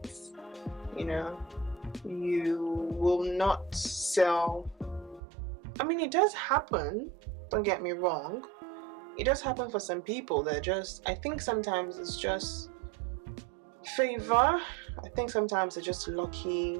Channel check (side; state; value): left; drops out; at 5.2 s